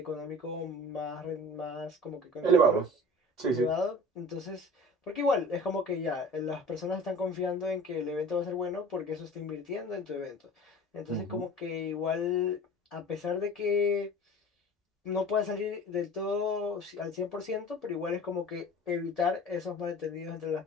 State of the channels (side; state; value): both; normal; correlation 0.41